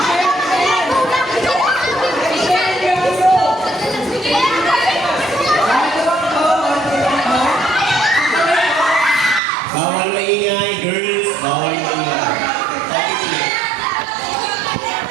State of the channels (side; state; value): left; drops out; at 9.4 s